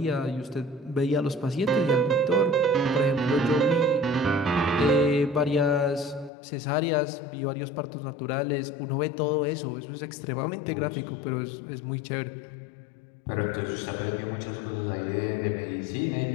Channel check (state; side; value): drops out; right; at 6.3 s